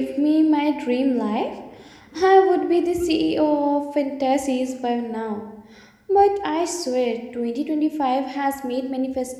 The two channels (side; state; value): both; identical; correlation 1.00